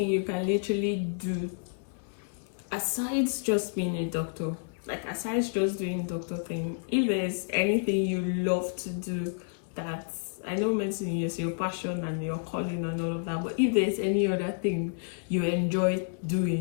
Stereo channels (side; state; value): right; silent; digital silence